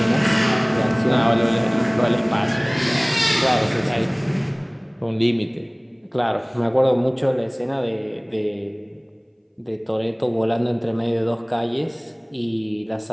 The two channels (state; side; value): identical; both; correlation 1.00